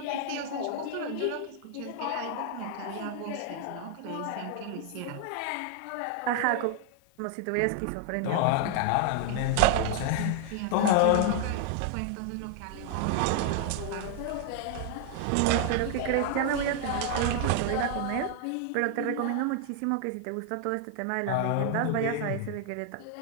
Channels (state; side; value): different; both; correlation 0.00